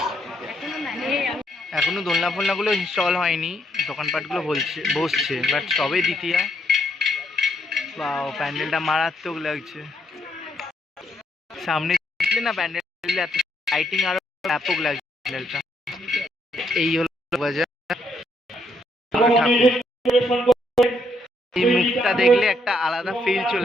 এখনো দোলনা ফোলনাগুলো ইনস্টল হয়নি, দোকানপাটগুলো বসছে, বাট সবে দ্বিতীয়া। বাও, প্যান্ডেলটা মারাত্মক লাগছে। সামনে দেখলে না প্যান্ডেল এত লাইটিং আরো ব্যাপক লাগছে প্যান্ডেলটা। এই হলো বাজার। এই মুখটা দেখলে একটা আলাদা ফিল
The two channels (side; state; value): both; normal; correlation 0.74